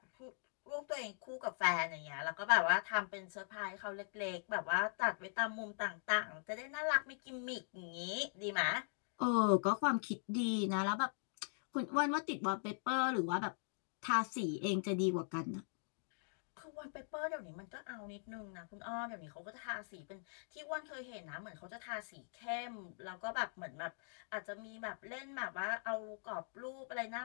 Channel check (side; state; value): right; silent; digital silence